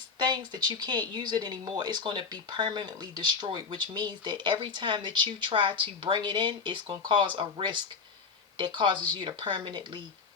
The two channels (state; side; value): quieter; right; 5.2 dB